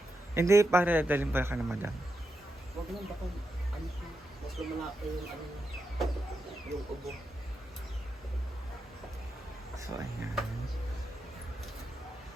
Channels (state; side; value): normal; both; correlation 0.86